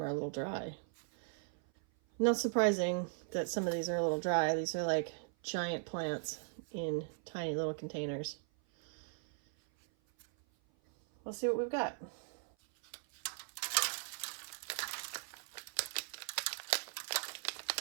are a little dry. Not surprising that some of these are a little dry. These are like giant plants in tiny little containers. Let's see what we've got.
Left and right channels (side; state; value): left; silent; 52 dB below the other